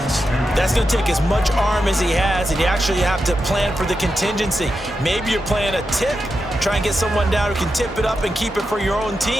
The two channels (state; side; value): normal; both; correlation 0.88